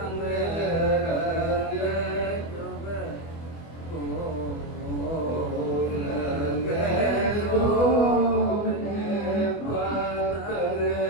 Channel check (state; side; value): late; right; 24 ms